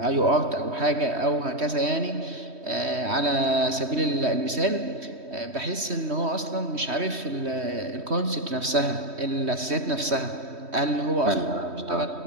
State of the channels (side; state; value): left; late; 3.2 ms